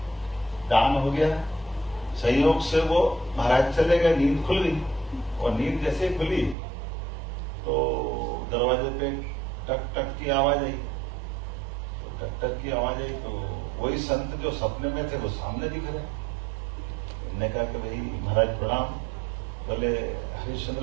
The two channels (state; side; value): drops out; left; at 6.6 s